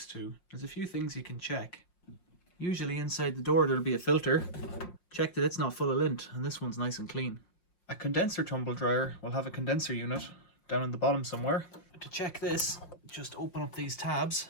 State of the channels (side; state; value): right; late; 5.3 ms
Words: to, there's a few things you can check. Usually inside the door there'll be a filter. Check that it's not full of lint, and this one's nice and clean. A condenser tumble dryer will have a condenser unit down in the bottom somewhere. To check this, just open up these tabs